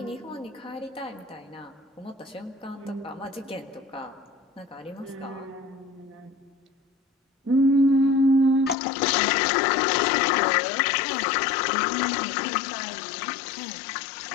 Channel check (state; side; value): drops out; right; at 8.8 s